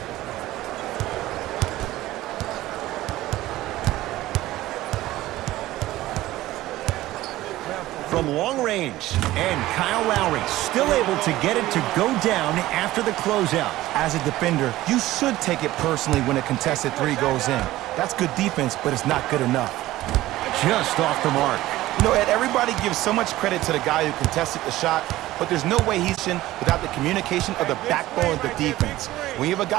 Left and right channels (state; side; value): quieter; left; 16.2 dB